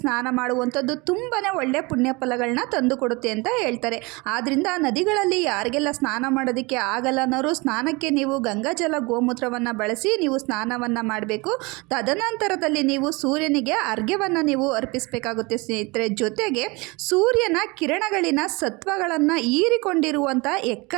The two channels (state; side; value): quieter; left; 25.9 dB